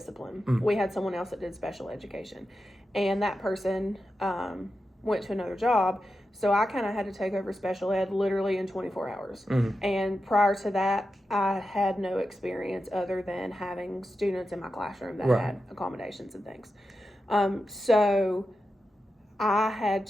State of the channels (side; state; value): both; normal; correlation 0.90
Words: We had someone else that did special education, and that person went to another job. So I kind of had to take over special ed literally in 24 hours. And prior to that, I had no experience other than having students in my classroom that had accommodations and things. So I had